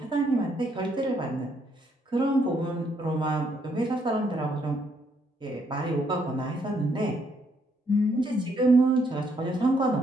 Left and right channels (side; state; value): both; normal; correlation 0.72